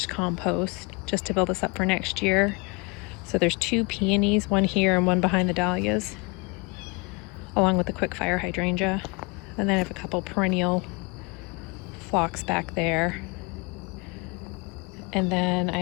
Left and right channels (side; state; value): right; quieter; 29.0 dB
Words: compost just to build this up for next year. So there's 2 peonies, one here and one behind the dahlias, along with the quick fire hydrangea. And then I have a couple perennial phlox back there. And then